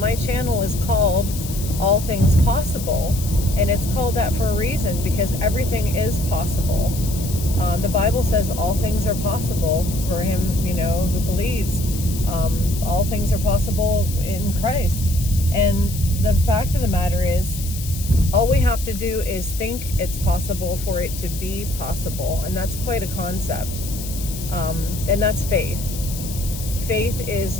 channel is called All Things Possible, and it's called that for a reason, because everything is possible. The Bible says all things are possible for him, who believes. All things are possible in Christ. And the fact of the matter is, all we have to do is think it's possible for it to be possible. And that's quite a concept. And that's faith. Faith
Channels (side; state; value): left; noise; hiss, 11 dB below the sound